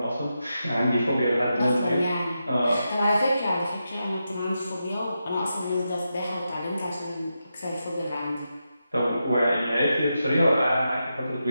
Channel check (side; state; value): both; inverted; correlation -0.87